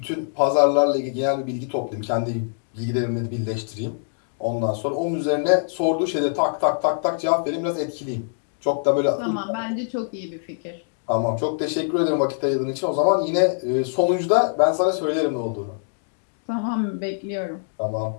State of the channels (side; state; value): right; silent; digital silence